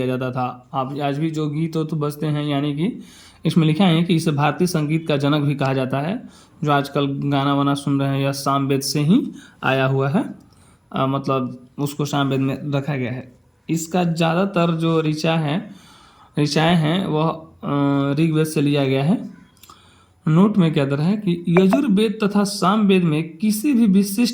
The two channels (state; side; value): identical; both; correlation 1.00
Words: जाता था। आप आज भी जो गीत तो बजते हैं, यानी कि इसमें लिखा है कि इसे भारतीय संगीत का जनक भी कहा जाता है। जो आजकल गाना वाना सुन रहे हैं यह साम वेद से ही आया हुआ है, मतलब उसको साम वेद में रखा गया है। इसका ज़्यादातर जो ऋचाएँ हैं वह ऋग्वेद से लिया गया है। नोट में क्या दर है कि यजुर्वेद तथा सामवेद में किसी भी